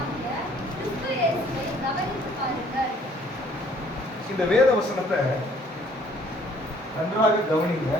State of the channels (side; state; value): both; normal; correlation 0.59